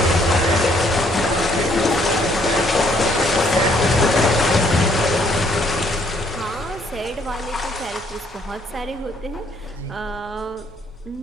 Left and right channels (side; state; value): both; normal; correlation 0.66